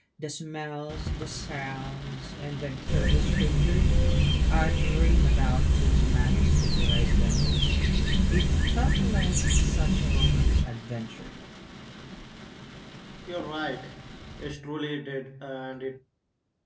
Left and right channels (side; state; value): both; identical; correlation 1.00